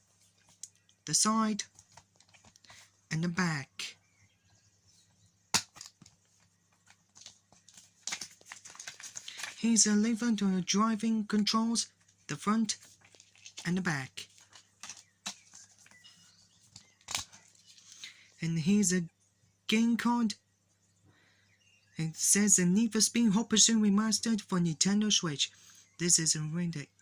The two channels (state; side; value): identical; both; correlation 1.00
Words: the side, and the back. Here's a lever to the driving controls, the front and the back. And here's a game card. It says the Need for Speed Hot Pursuit Remastered for Nintendo Switch. This is rated